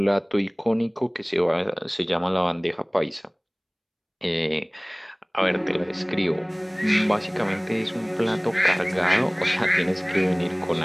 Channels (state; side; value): identical; both; correlation 1.00